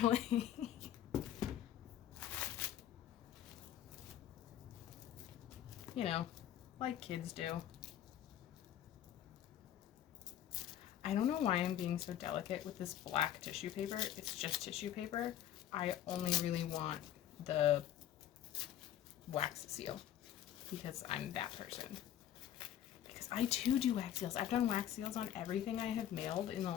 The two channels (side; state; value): right; quieter; 11.3 dB